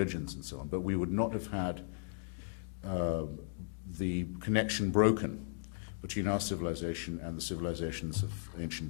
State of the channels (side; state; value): right; silent; digital silence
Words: and so on, but we would not have had the connection broken between our civilization and the civilizations of